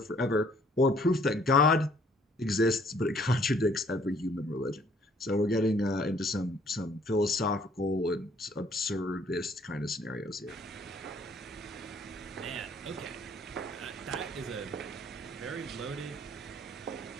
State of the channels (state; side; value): normal; both; correlation 0.61